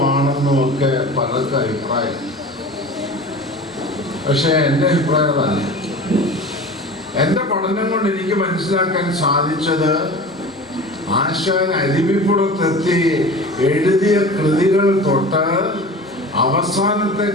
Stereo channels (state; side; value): normal; both; correlation 0.36